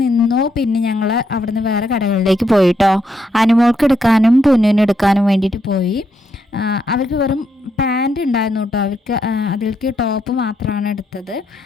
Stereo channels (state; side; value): normal; both; correlation 0.78